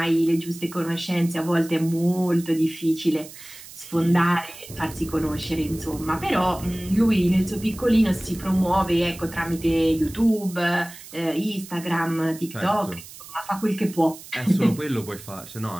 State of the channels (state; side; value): noise; right; hiss, 16 dB below the sound